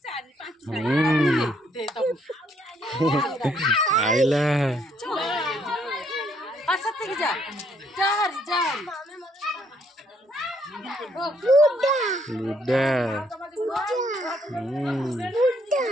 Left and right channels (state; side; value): normal; both; correlation 0.69